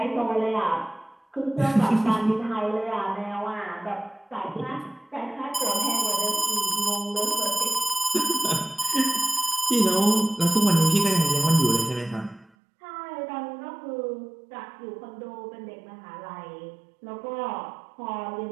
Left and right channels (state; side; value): drops out; left; at 12.5 s